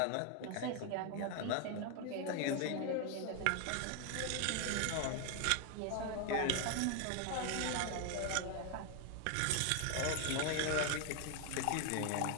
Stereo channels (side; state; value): both; different; correlation 0.01